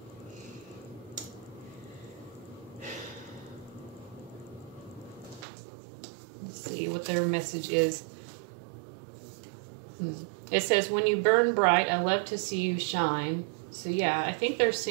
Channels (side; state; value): left; drops out; at 5.5 s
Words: Let's see what their message is. It says, when you burn bright, I love to see you shine. So yeah, I think they're